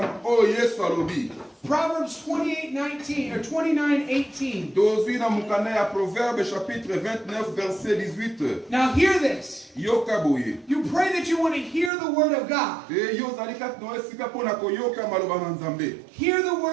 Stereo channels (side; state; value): left; drops out; at 11.9 s